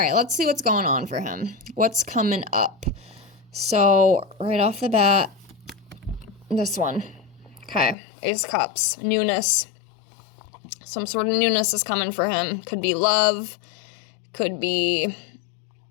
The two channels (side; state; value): right; drops out; at 8.0 s